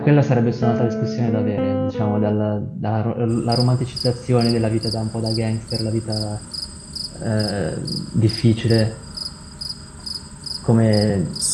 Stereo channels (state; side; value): identical; both; correlation 1.00